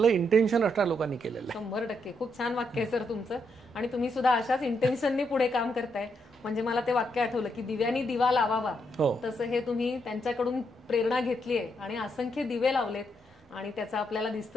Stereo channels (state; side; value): normal; both; correlation 0.78